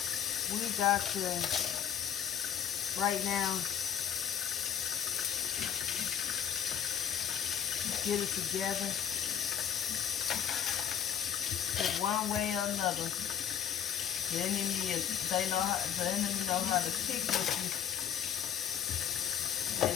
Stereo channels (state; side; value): quieter; right; 9.1 dB